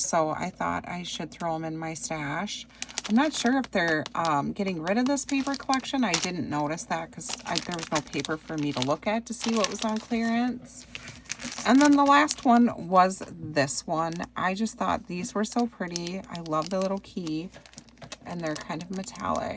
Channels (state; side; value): identical; both; correlation 1.00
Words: I thought I should throw them in my stash. I'm not sure if they're getting rid of this paper collection. I didn't notice that because there was no paper for me to look at to see what was on clearance. And then the last one was this one. I just thought these were so pretty. I love the little key, and they're kind of